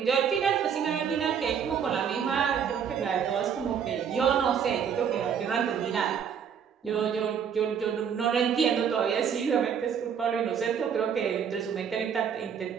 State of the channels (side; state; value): left; quieter; 7.6 dB